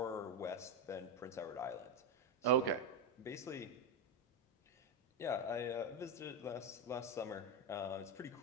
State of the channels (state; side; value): normal; both; correlation 0.08